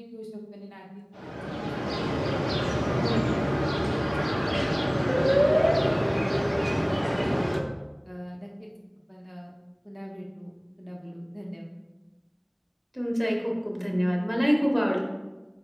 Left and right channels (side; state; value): both; identical; correlation 1.00